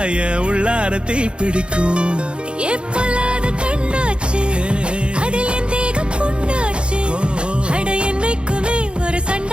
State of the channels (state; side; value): late; left; 0.055 ms